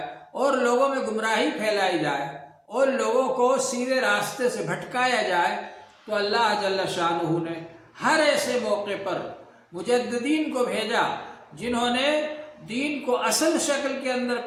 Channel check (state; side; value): identical; both; correlation 1.00